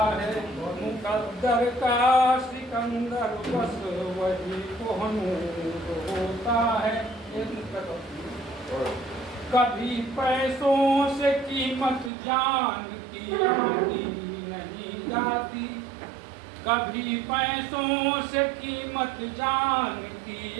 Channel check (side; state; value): left; drops out; at 12.1 s